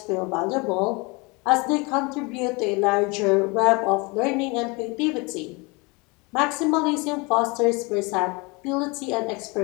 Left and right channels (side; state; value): right; quieter; 27.7 dB